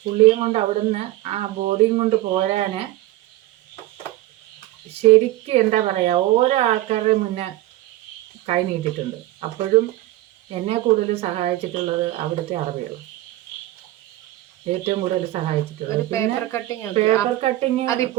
പുള്ളിയും കൊണ്ട് അവിടുന്ന് ആ ബോഡിയും കൊണ്ട് പോരാൻ ശരിക്കും എന്താ പറയുക, ഓരോ ആൾക്കാരുടെ മുന്നേ കൈ നീട്ടിയിട്ടുണ്ട്. അപ്പോഴും എന്നെ കൂടുതൽ സഹായിച്ചിട്ടുള്ളത് അവിടുത്തെ അറബികൾ ഏറ്റവും കൂടുതൽ സഹായിച്ചിട്ടുള്ളത്. പേപ്പർ കട്ടിങ്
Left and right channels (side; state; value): left; quieter; 16.0 dB